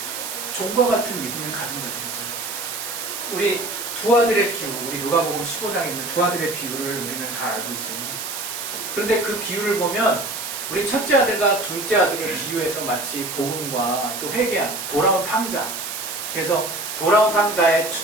종과 같은 믿음을 가진 자들이죠. 우리 두 아들의 비유, 우리 누가복음 15장에 있는 두 아들의 비유를 우리는 잘 알고 있습니다. 그런데 그 비유를 보면 우리 첫째 아들과 둘째 아들을 비유해서 마치 복음과 또 회개한 돌아온 탕자, 그래서 돌아온 탕자에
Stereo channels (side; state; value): right; noise; hiss, 6 dB below the sound